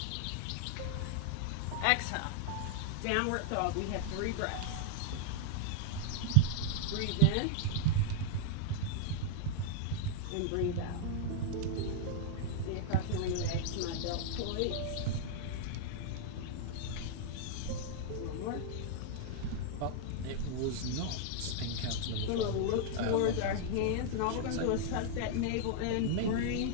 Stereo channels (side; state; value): both; different; correlation -0.01